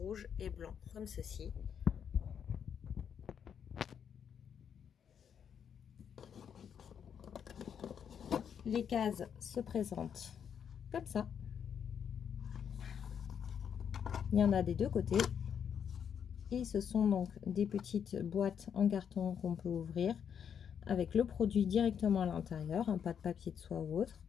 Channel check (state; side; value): quieter; right; 7.9 dB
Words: et blanc, comme ceci. Les cases se présentent comme ça. Il y en a des deux côtés. Et ce sont donc des petites boîtes en carton qu'on peut ouvrir avec le produit directement à l'intérieur, pas de papier de soie ou autre.